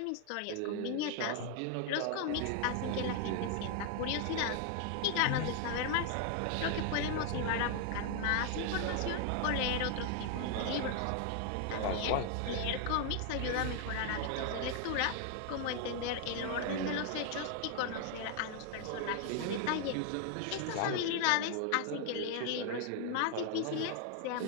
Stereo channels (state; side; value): different; both; correlation 0.00